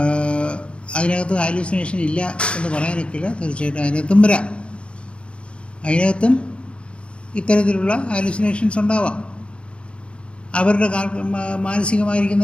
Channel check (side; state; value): right; late; 0.058 ms